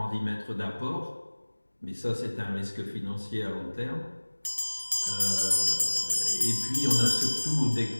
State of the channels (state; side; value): inverted; both; correlation -1.00